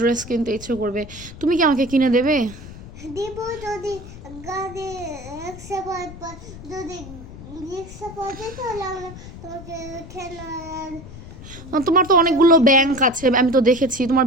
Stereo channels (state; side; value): noise; left; rumble, 15 dB below the sound